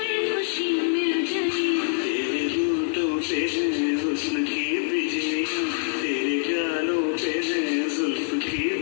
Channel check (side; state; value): right; silent; digital silence